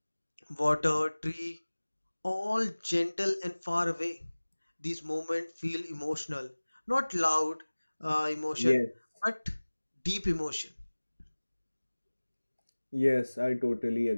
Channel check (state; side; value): inverted; both; correlation -1.00